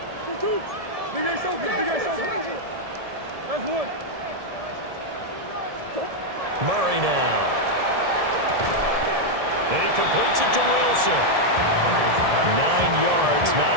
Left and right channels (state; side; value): late; left; 1.7 ms